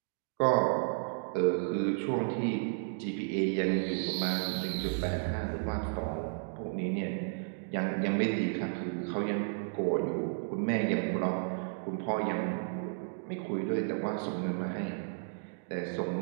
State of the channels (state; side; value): silent; left; digital silence